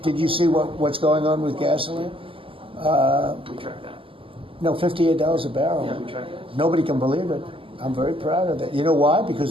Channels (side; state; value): left; late; 0.26 ms